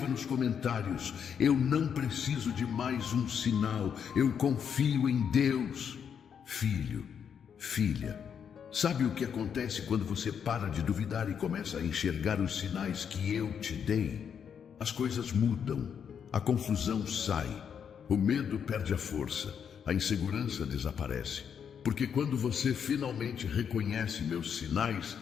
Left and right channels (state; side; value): quieter; right; 7.6 dB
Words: nos comentários. Eu não preciso de mais um sinal. Eu confio em Deus. Filho, filha, sabe o que acontece quando você para de duvidar e começa a enxergar os sinais que eu te dei? As coisas mudam, a confusão sai, o medo perde a força, a insegurança desaparece. Porque quando você finalmente reconhece meus sinais,